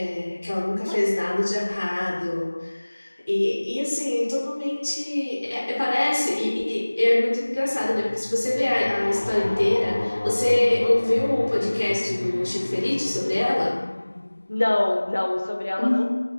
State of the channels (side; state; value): both; inverted; correlation -1.00